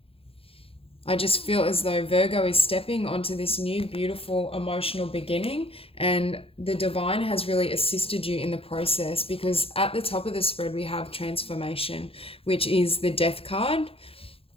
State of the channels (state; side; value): late; right; 0.27 ms